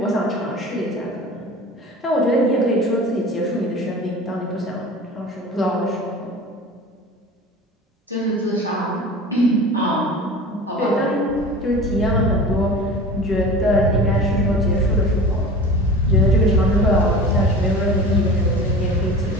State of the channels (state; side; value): normal; both; correlation 0.37